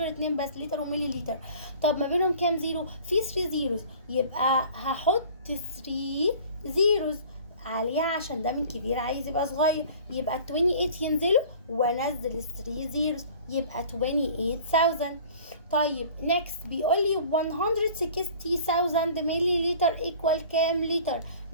2 بس، لتر وملي لتر. طب ما بينهم كام زيرو؟ في 3 زيروز، يبقى هحط 3 زيروز عليها عشان ده من كبير عايز يبقى صغير، يبقى 28 ينزلوا وانزل ال 3 زيروز، يبقى 28,000. طيب نيكست بيقول لي 160,000 ملي لتر ايكوال كام لتر؟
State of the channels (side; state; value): both; inverted; correlation -0.46